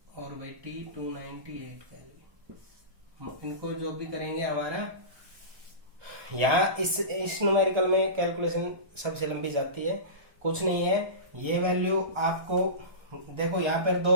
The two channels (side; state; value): left; late; 1.4 ms